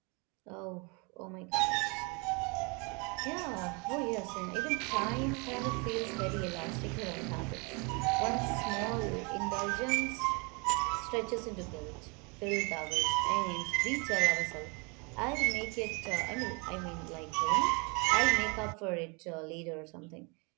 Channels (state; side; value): quieter; left; 31.6 dB